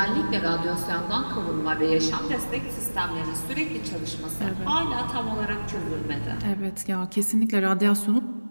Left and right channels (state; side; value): inverted; both; correlation -1.00